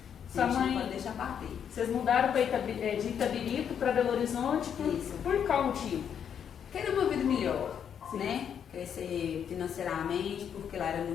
Sua mãe, não pode deixar bater. Vocês mudaram de Itabirito para Belo Horizonte por qual motivo? Querer uma vida melhor, né? Crescer financeiramente, porque lá era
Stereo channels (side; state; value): right; quieter; 8.2 dB